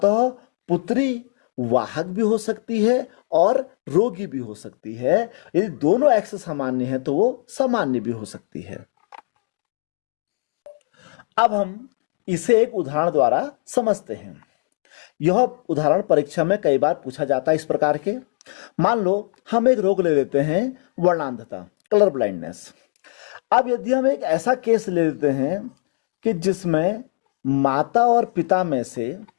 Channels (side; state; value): right; quieter; 34.0 dB